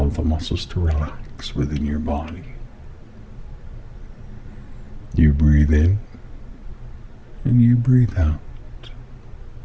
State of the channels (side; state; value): both; identical; correlation 1.00